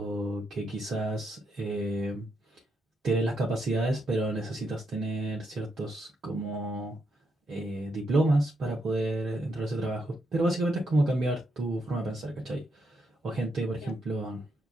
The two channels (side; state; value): both; normal; correlation 0.80